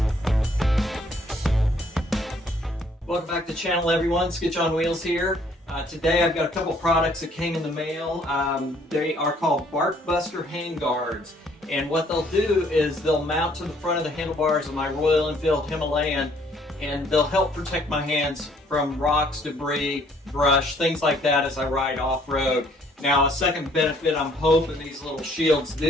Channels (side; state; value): both; normal; correlation 0.63